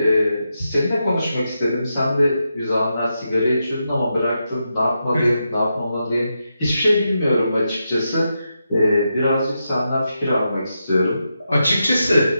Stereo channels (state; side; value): inverted; both; correlation -0.86